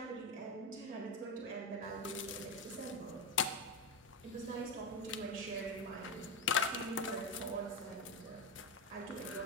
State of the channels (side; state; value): both; normal; correlation 0.12